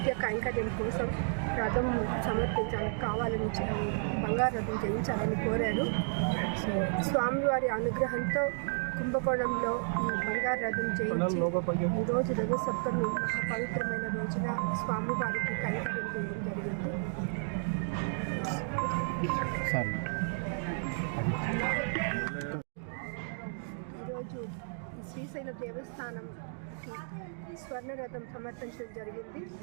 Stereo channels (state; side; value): silent; left; digital silence